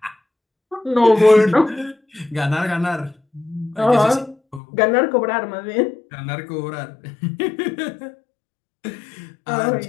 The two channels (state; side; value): drops out; right; at 4.6 s